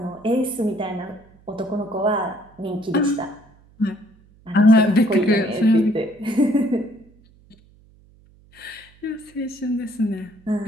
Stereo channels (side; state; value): right; noise; hum, 28 dB below the sound